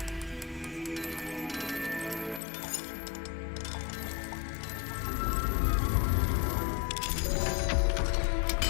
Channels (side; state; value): right; drops out; at 2.4 s